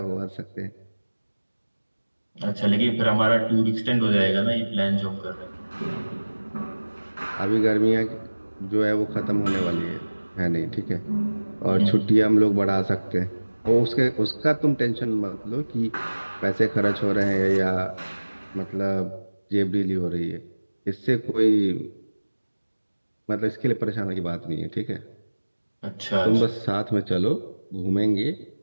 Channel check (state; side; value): inverted; both; correlation -1.00